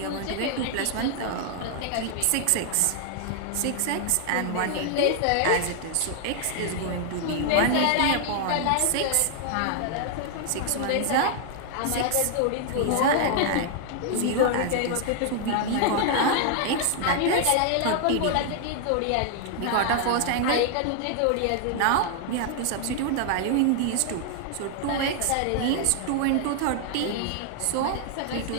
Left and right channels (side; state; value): both; different; correlation 0.00